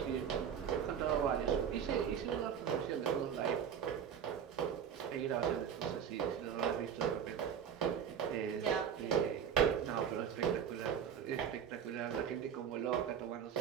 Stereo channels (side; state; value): left; quieter; 8.1 dB